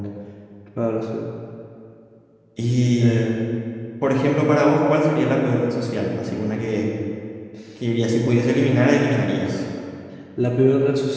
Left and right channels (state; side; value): identical; both; correlation 1.00